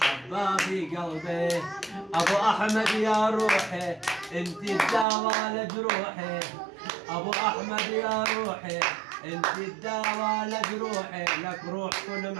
في قلبي. أبو أحمد يا روحي انت الدواء لجروحي. أبو أحمد يا روحي انت الدواء لجروحي. لك روح كل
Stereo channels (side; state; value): left; drops out; at 5.1 s